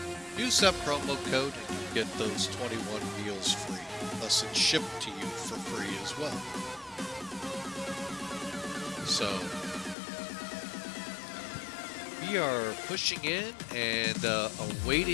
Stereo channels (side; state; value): right; drops out; at 10.0 s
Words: Use that promo code and you get those 21 meals free. Plus it's shipped to you for free as well. So we are pushing in and